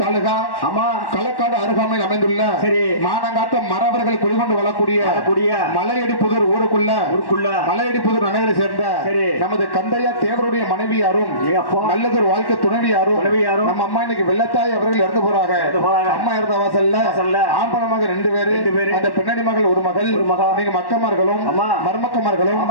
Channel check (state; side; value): late; right; 1.1 ms